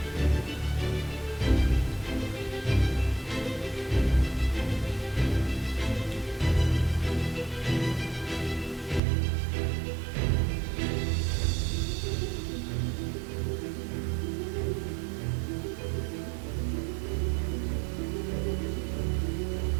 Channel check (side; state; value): left; drops out; at 9.0 s